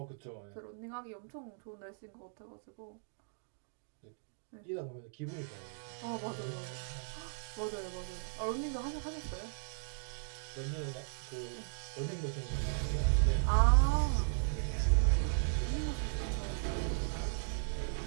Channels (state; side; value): silent; left; digital silence